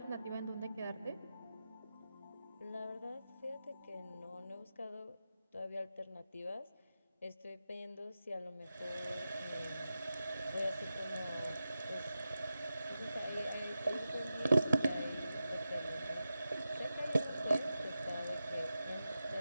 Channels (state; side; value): inverted; both; correlation -0.91